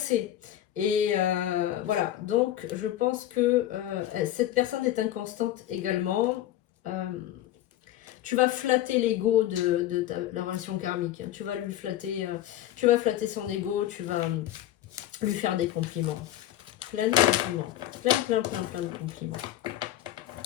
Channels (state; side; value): quieter; right; 13.0 dB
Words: Et voilà, donc je pense que cette personne est inconstante également. Tu vas flatter l'ego de la relation karmique. Hein. Tu vas lui flatter, tu vas flatter son ego, tu vas lui faire des compliments. Plein de compliments. Plein de compliments.